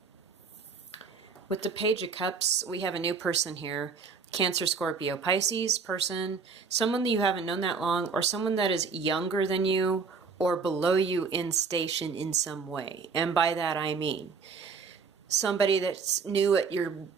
With the Page of Cups, we have a new person here. Cancer, Scorpio, Pisces person, someone that you haven't known that long, or someone that is younger than you or below you in station in some way. And by that I mean somebody that's new at your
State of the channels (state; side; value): quieter; left; 5.2 dB